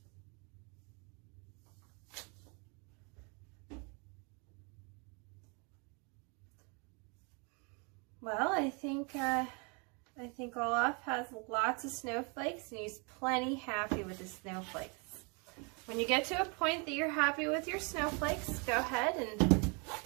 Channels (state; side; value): quieter; left; 33.2 dB